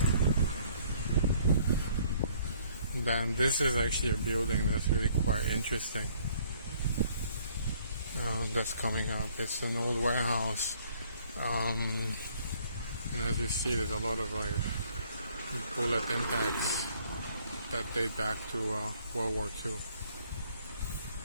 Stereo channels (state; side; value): inverted; both; correlation -0.61